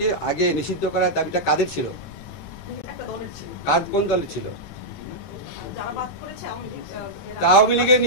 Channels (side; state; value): both; normal; correlation -0.07